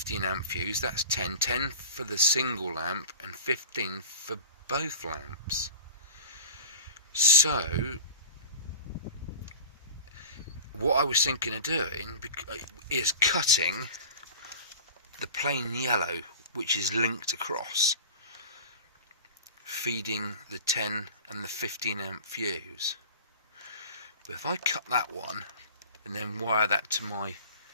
amp fuse, that's 10 for the single lamp and 15 for both lamps. So what I was thinking of doing is cutting the plain yellow, which is linked across, feeding the 10 and the 15 amp fuse. But if I cut that one and then wire that to my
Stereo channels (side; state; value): both; inverted; correlation -0.37